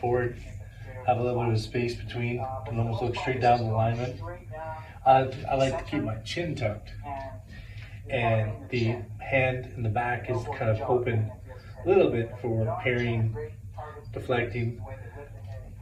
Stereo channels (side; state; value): both; identical; correlation 1.00